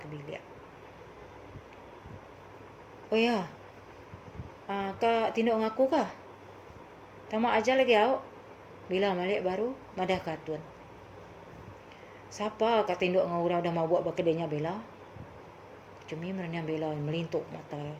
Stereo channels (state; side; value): identical; both; correlation 1.00